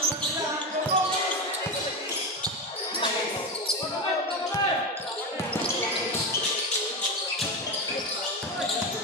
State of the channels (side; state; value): both; normal; correlation 0.17